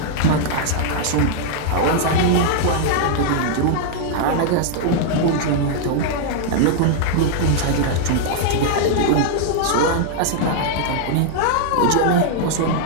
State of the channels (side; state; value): both; different; correlation -0.01